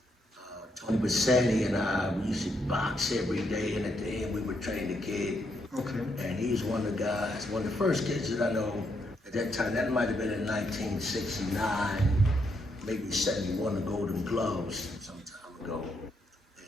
Tony Bassani and I, we used to box every day, and at the end we would train the kid. And he's one of the guys, one of the first kids that I know at that time. That might have been in 1969, maybe 71, the Golden Gloves some time ago.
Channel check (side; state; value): both; normal; correlation 0.77